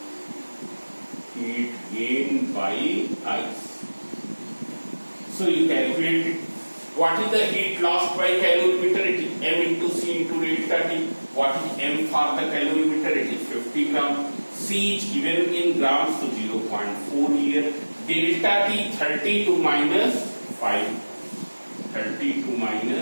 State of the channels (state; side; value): inverted; both; correlation -1.00